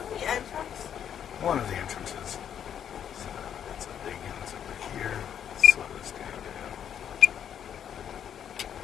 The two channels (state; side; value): quieter; right; 9.0 dB